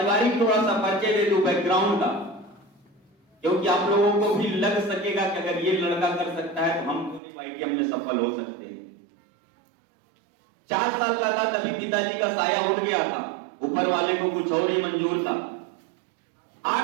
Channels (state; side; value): drops out; left; at 7.2 s